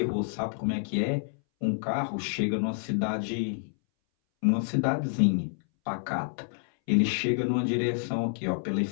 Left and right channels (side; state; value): right; silent; 59 dB below the other